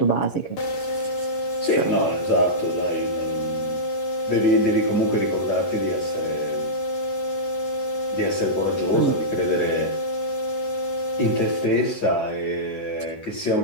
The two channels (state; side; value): late; right; 11 ms